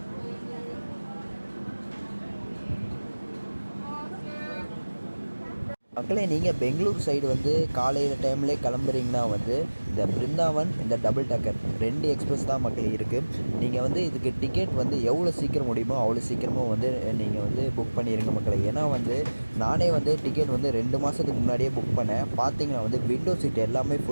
மக்களே நீங்கள் பெங்களூர் சைடு வந்து காலையில் டைம்லேயே கிளம்புறீங்கன்னா வந்து இந்த பிருந்தாவன் இந்த டபுள் டேக்கர் 2 எக்ஸ்பிரஸ் தான் மக்களே இருக்குது. நீங்கள் வந்து இதுக்கு டிக்கெட் வந்து எவ்வளோ சீக்கிரம் முடியுமோ அவ்வளோ சீக்கிரமாக வந்து நீங்கள் வந்து புக் பண்ணிடுங்க மக்களே. ஏன்னா வந்து நானே வந்து டிக்கெட் வந்து 2 மாதத்துக்கு முன்னாடியே புக் பண்ணேன். பார்த்தீங்கன்னா வந்து விண்டோ சீட் எல்லாமே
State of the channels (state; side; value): inverted; both; correlation -1.00